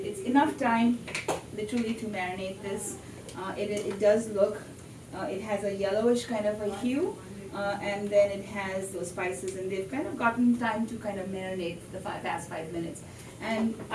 enough time literally to marinate this. It does look, it has a yellowish kind of a hue, and then it has those spices, and they've kind of gotten time to kind of marinate the past 5 minutes. And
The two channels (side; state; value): both; identical; correlation 1.00